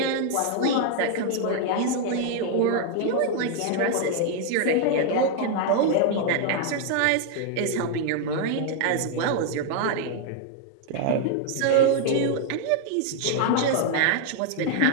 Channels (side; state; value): both; different; correlation 0.00